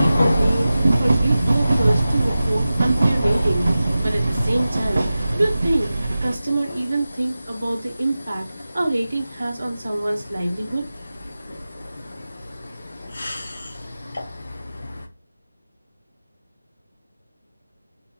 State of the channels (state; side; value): inverted; both; correlation -0.95